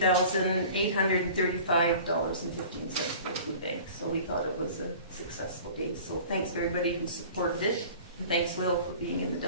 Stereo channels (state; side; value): inverted; both; correlation -0.43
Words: for the food bank. So we thought it was a successful day. So thanks to everybody who supported it, and thanks Will for being in the